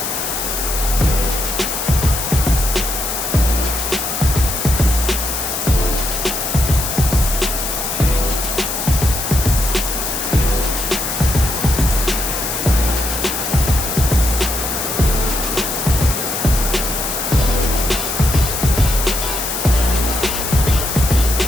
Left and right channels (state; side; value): noise; left; hiss, 3 dB below the sound